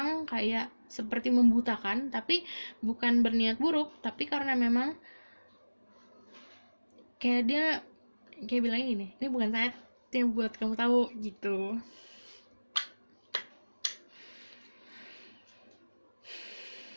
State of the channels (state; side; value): inverted; both; correlation -1.00